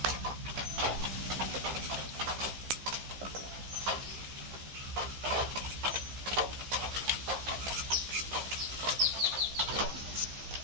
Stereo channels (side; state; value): left; late; 15 ms